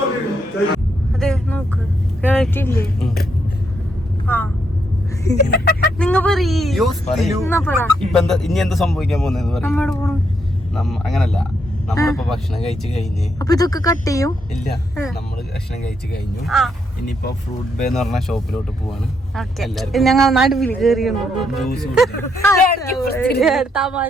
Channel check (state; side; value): normal; both; correlation 0.77